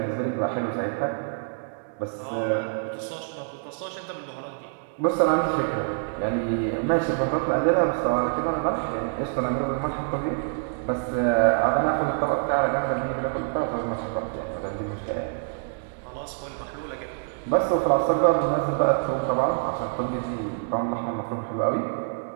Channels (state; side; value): silent; left; digital silence